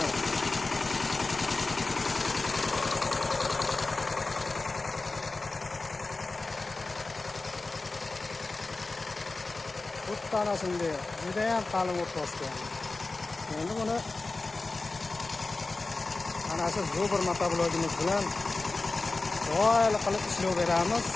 Ana shunday juda ham qalin o't bosgan. Endi buni ana shu zo'bir motoblogimiz bilan do'yli qilib ishlov beramiz.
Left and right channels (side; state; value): right; quieter; 3.4 dB